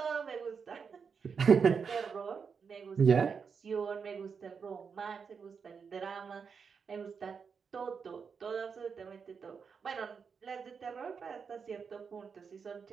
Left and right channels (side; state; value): left; quieter; 6.0 dB